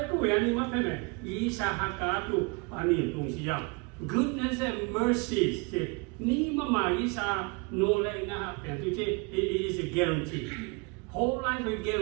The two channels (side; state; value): left; quieter; 30.7 dB